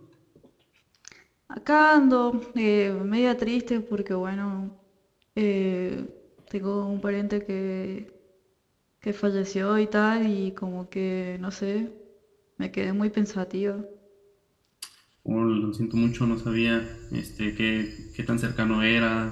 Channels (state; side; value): identical; both; correlation 1.00